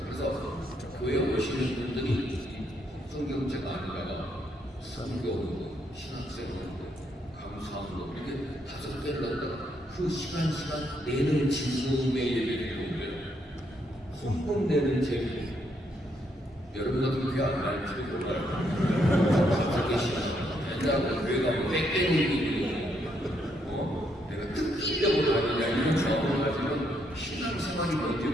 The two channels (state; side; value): normal; both; correlation 0.75